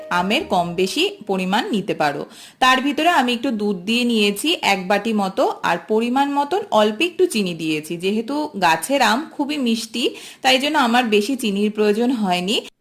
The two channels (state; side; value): identical; both; correlation 1.00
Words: আমের কম বেশি পরিমাণ নিতে পারো। তার ভিতরে আমি একটু দুধ দিয়ে নিয়েছি 1 বাটি মতো, আর পরিমাণ মতন অল্প একটু চিনি দিয়েছি। যেহেতু গাছের আম খুবই মিষ্টি তাই জন্য আমার বেশি চিনির প্রয়োজন হয়নি।